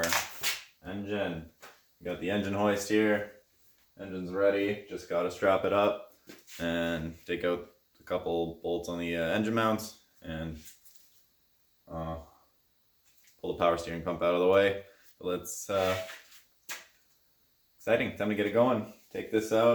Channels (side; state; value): both; identical; correlation 1.00